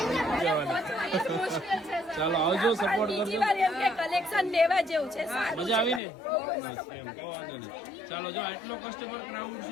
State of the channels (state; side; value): drops out; right; at 6.0 s